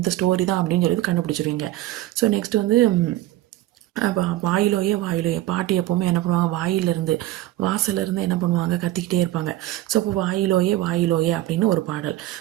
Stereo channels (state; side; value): quieter; left; 15.5 dB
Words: ஸ்டோரி தான் அப்படின்னு சொல்லி கண்டுபிடிச்சிருவீங்க. ஸோ நெக்ஸ்ட் வந்து வாயிலோயே பாட்டி எப்போவுமே என்ன பண்ணுவாங்க, வாசலேருந்து என்ன பண்ணுவாங்க, கத்திக்கிட்டே இருப்பாங்க. ஸோ அப்போ வாயிலோயே அப்படின்னு ஒரு பாடல்.